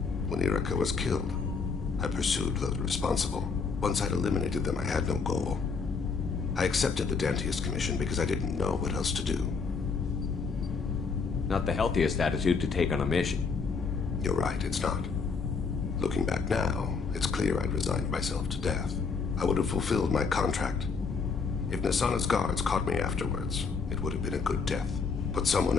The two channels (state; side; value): quieter; right; 5.1 dB